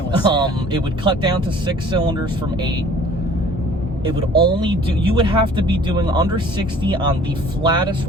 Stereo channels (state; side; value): normal; both; correlation 0.51